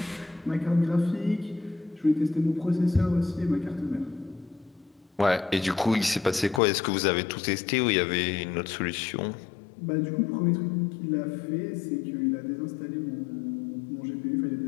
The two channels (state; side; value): drops out; right; at 6.6 s